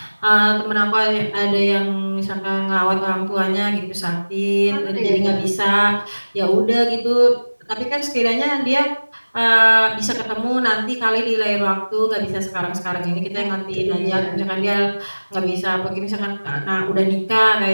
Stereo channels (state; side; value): inverted; both; correlation -1.00